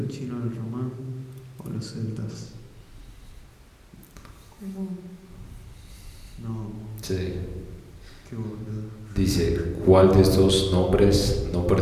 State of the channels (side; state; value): both; identical; correlation 1.00